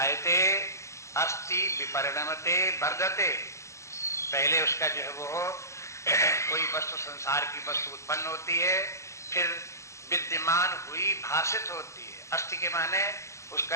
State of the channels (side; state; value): right; late; 0.14 ms